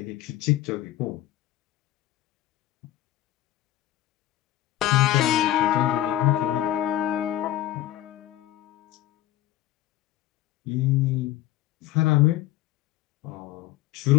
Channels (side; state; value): right; quieter; 13.9 dB